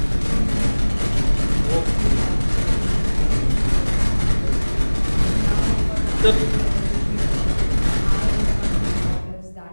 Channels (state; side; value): inverted; both; correlation -1.00